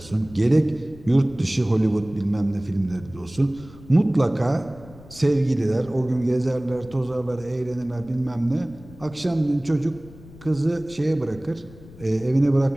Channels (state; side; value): noise; left; rumble, 20 dB below the sound